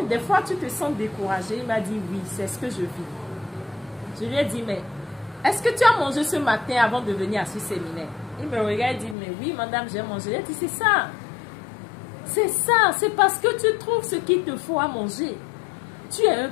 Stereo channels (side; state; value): right; drops out; at 9.2 s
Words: des fois, tu te sens découragé. Il m'a dit, oui, c'est ce que je vis. Je lui ai dit, mais est-ce que tu as mangé ce matin avant de venir à ce séminaire? Il me regarde et dit, mais oui, madame, j'ai mangé. Il a dit, c'est ça. C'est ça. C'est parce que tu trouves ce qu'il te faut à manger. Tu es un